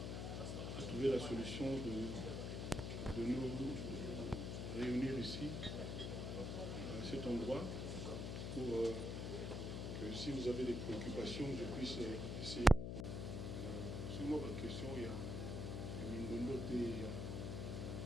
a trouvé la solution de nous réunir ici, à cet endroit, pour que si vous avez des préoccupations, je puisse essayer. Sur moi, ma question, il y a Mindondo,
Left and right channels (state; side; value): noise; left; hum, 2 dB below the sound